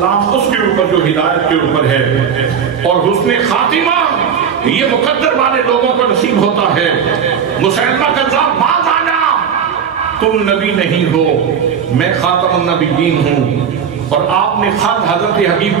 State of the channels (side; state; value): left; quieter; 7.4 dB